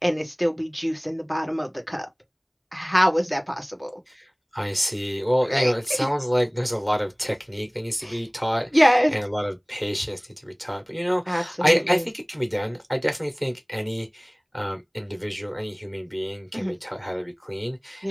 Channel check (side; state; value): both; identical; correlation 1.00